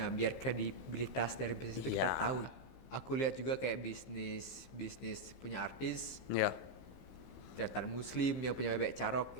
biar kredibilitas dari bisnis itu kita tahu. Aku lihat juga kayak bisnis punya artis, teater muslim yang punya bebek carok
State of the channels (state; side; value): late; right; 15 ms